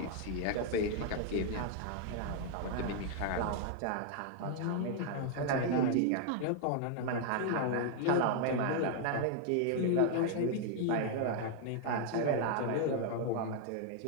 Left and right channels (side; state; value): both; different; correlation 0.00